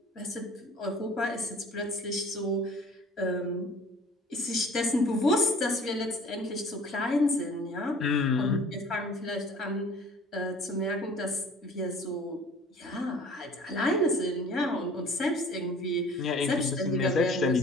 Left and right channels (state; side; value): normal; both; correlation 0.49